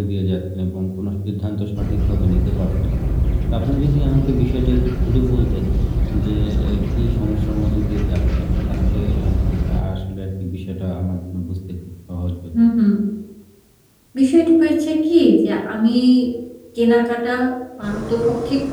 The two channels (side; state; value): both; identical; correlation 1.00